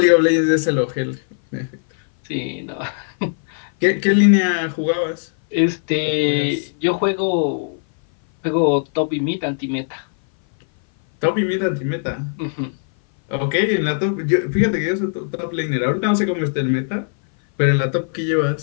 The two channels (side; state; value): right; silent; 59 dB below the other